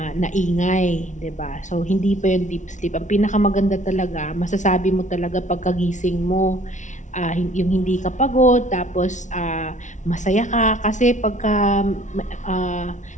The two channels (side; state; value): right; late; 0.36 ms